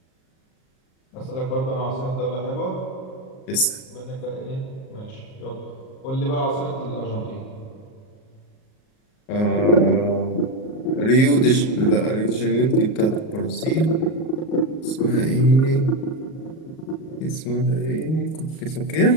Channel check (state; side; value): late; right; 38 ms